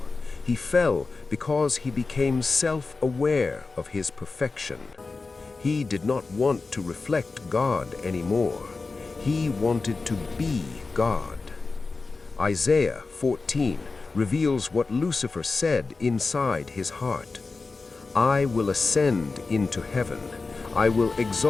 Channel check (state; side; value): quieter; right; 4.0 dB